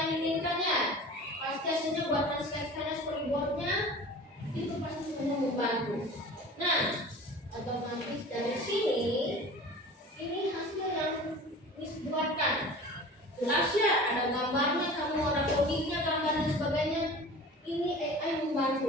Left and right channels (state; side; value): normal; both; correlation 0.39